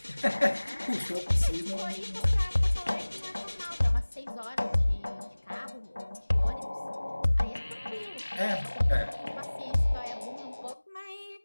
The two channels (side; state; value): both; inverted; correlation -1.00